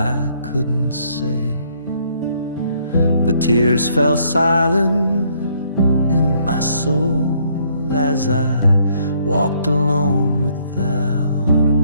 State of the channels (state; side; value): inverted; both; correlation -0.67